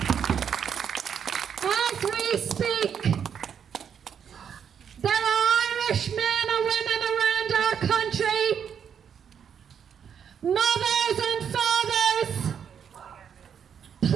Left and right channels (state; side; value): quieter; left; 7.8 dB